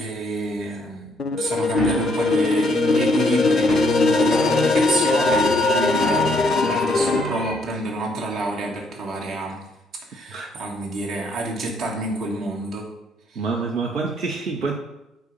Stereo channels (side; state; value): both; normal; correlation 0.69